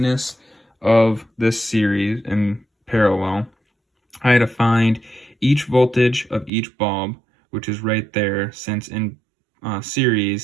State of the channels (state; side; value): drops out; left; at 6.5 s